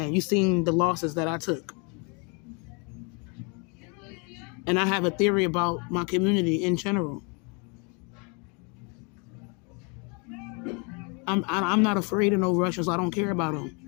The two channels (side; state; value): right; quieter; 33.5 dB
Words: you've seen the losses that I took, and I have a theory about my community in general. I'm not afraid of no Russians. I don't care about them.